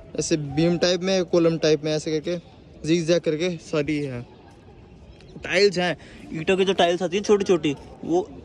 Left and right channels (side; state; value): both; identical; correlation 1.00